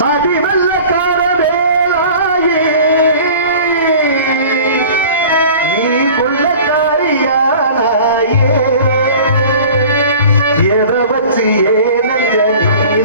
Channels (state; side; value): inverted; both; correlation -0.43